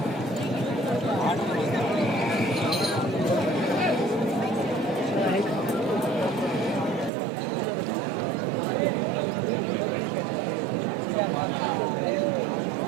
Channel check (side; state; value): left; drops out; at 7.1 s